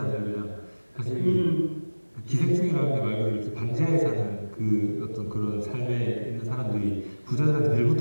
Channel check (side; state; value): both; inverted; correlation -1.00